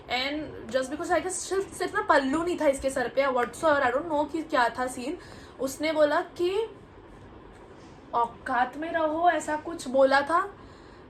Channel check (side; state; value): both; identical; correlation 1.00